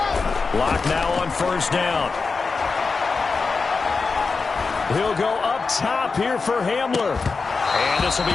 Locke now on 1st down. He'll go up top here for Hamler. And this will be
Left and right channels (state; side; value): quieter; right; 4.5 dB